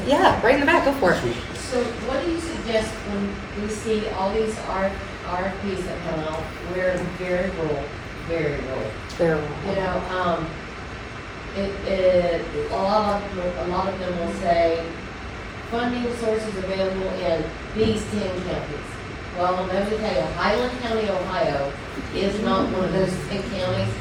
yeah, right in the back, go for it. So what do you suggest when we see all these RFPs that come out, we're very rural, very rural? There. You know, a lot of them will say, funding sources available in these 10 counties. Well, let me tell you, Highland County, Ohio is not one of those 10 counties,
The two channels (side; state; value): both; identical; correlation 1.00